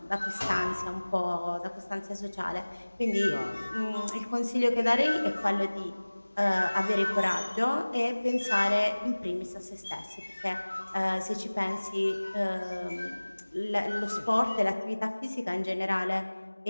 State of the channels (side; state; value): both; inverted; correlation -1.00